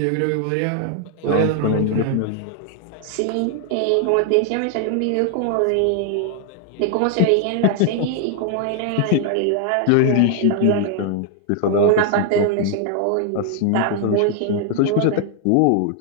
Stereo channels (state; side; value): different; both; correlation 0.00